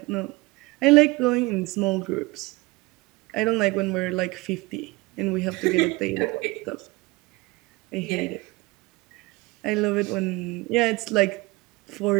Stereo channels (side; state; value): left; quieter; 23.0 dB